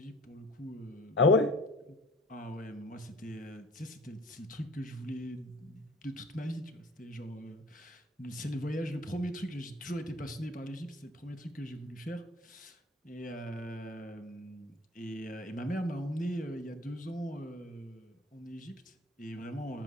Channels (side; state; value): both; normal; correlation 0.47